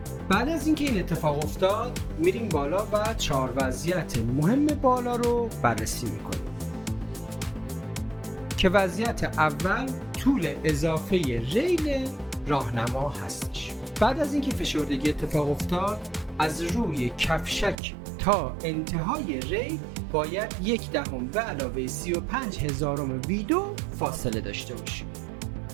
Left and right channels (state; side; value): drops out; left; at 17.8 s